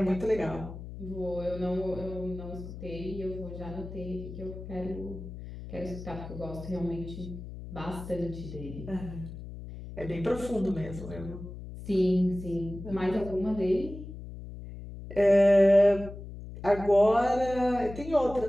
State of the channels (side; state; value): left; noise; hum, 11 dB below the sound